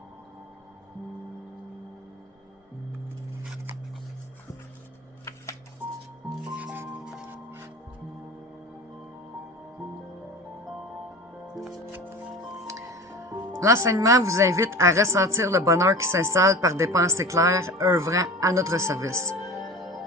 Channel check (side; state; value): both; normal; correlation 0.34